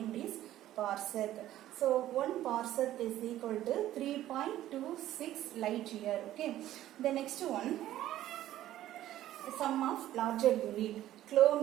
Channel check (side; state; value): left; quieter; 13.5 dB